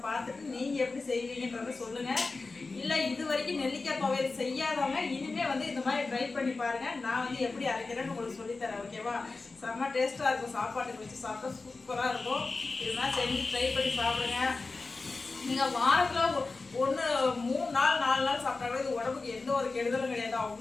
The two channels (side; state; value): right; quieter; 3.8 dB